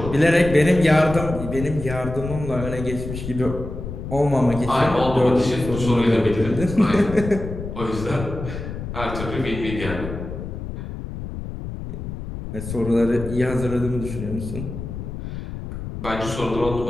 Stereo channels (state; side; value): noise; left; rumble, 8 dB below the sound